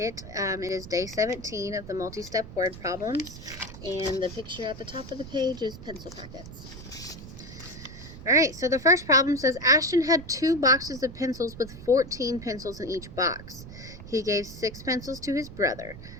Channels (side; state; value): right; noise; rumble, 14 dB below the sound